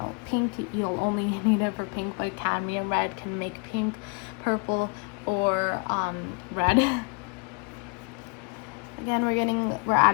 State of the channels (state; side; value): quieter; right; 36.0 dB